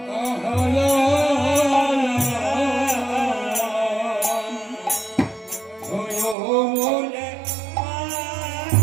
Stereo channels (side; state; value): left; drops out; at 6.4 s